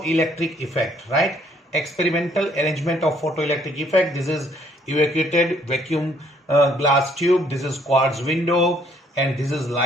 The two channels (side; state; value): both; normal; correlation 0.65